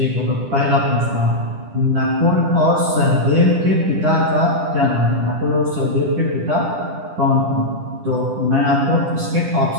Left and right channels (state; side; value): late; left; 10 ms